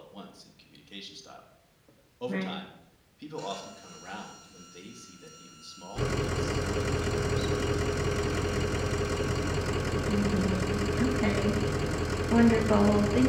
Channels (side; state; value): both; identical; correlation 1.00